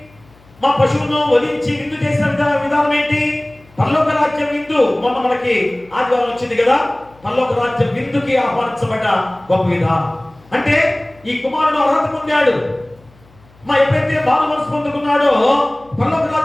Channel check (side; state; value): left; noise; hum, 28 dB below the sound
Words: మా పశువును వధించి విందు చేసిన విధానం ఏంటి? పరలోక రాజ్యం విందు. మొన్న మనకి ఆదివారం వచ్చింది కదా, పరలోక రాజ్యం విందుకి ఆహ్వానించబడ్డ గొప్ప విధానం. అంటే ఈ కుమారుడు అర్హత పొందాడు. ఎప్పుడైతే బాల మనసు పొందుకున్నాడో పరలోక